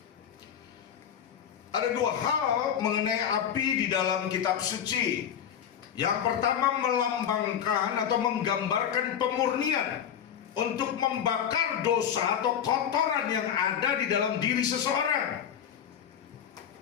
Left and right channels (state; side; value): quieter; right; 8.8 dB